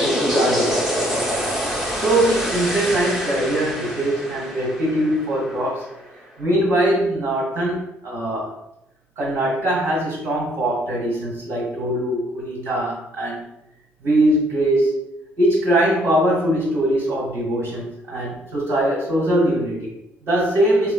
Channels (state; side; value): normal; both; correlation 0.66